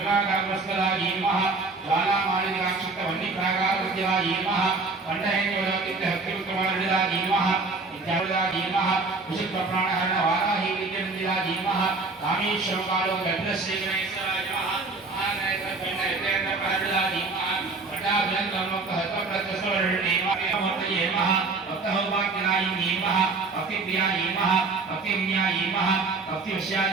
धीमः ज्वालामालिकाक्षिप्तवह्निप्राकारविद्या धीमः कंठहेन्द्रवलकितहक्तिविक्रमार्जिता धीमः विद्यावृता धीमः विशुद्धप्राणहरण वाराही विद्यमन्दिरा धीमः कामेश्वरकालो गन्धश्रीगणेश्वरा धीमः महानयकण्डयतेन्द्रपहर्जिता धीमः भट्टाभिनन्दमोक्तहस्तप्रत्यस्वरणीमः भक्तहौभाग्यनायी धीमः भक्तिप्रिया धीमः भक्तिविन्या धीमः भक्तिवश्या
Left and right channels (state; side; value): quieter; left; 3.8 dB